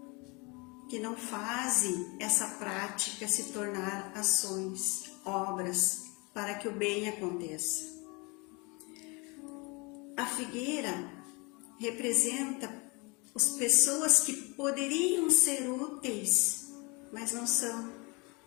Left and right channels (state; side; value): quieter; right; 28.5 dB